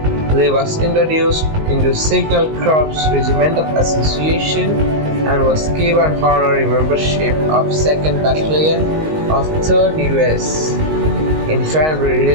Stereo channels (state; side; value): late; left; 19 ms